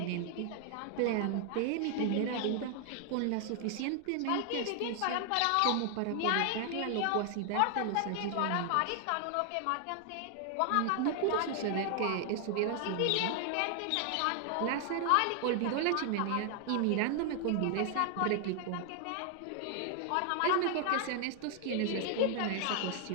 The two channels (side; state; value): both; different; correlation 0.00